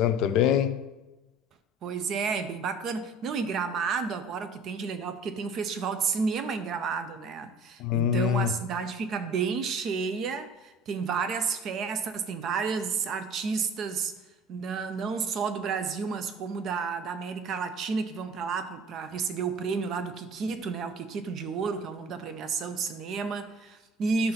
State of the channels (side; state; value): both; normal; correlation 0.45